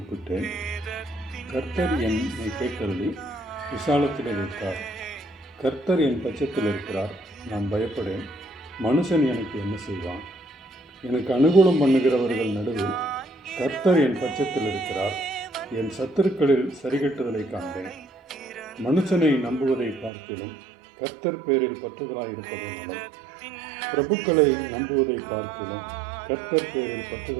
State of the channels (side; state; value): left; drops out; at 20.1 s